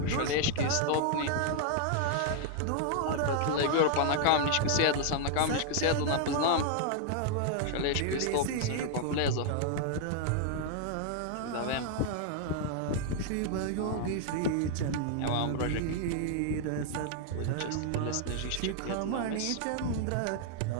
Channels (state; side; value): different; both; correlation 0.00